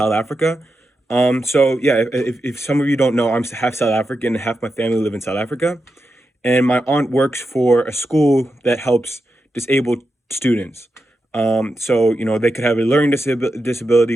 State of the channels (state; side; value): normal; both; correlation 0.88